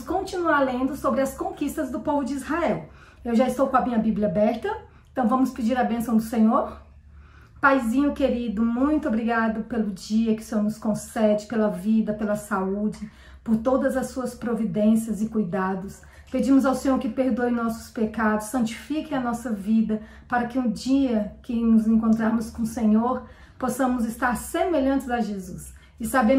continuar lendo sobre as conquistas do povo de Israel. Eu já estou com a minha Bíblia aberta, então vamos pedir a bênção do Senhor. Paizinho querido, muito obrigado pelo dia que o Senhor nos concede, pela vida, pela saúde, por todas as suas providências e cuidados. Pedimos ao Senhor que perdoe nossos pecados, santifique a nossa vida, para que um dia que nos encontrarmos com o Senhor, possamos estar semelhantes a Jesus. E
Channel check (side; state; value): both; identical; correlation 1.00